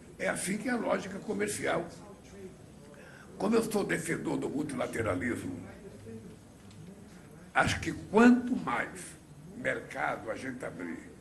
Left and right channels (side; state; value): both; identical; correlation 1.00